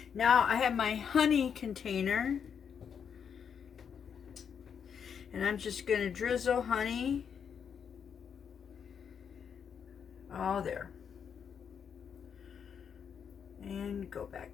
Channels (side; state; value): right; quieter; 7.3 dB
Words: Now I have my honey container. And I'm just going to drizzle honey all there. And go